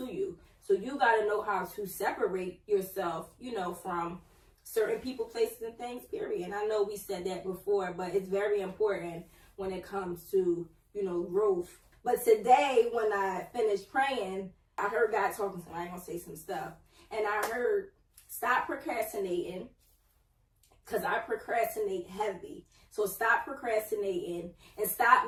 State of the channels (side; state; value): both; identical; correlation 1.00